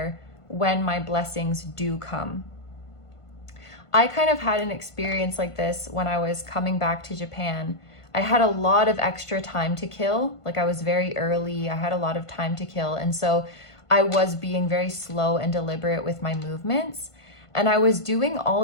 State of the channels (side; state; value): right; late; 1.5 ms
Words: when my blessings do come? I kind of had an experience like this when I was coming back to Japan. I had a lot of extra time to kill. Like I was very early. I had a lot of time to kill. And so I was being very slow and deliberate with my movements. And I was doing